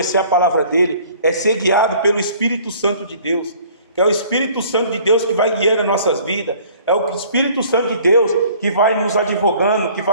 a palavra dele, é ser guiado pelo Espírito Santo de Deus, que é o Espírito Santo de Deus que vai guiando as nossas vidas, é o Espírito Santo de Deus que vai nos advogando, que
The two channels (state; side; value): inverted; both; correlation -0.53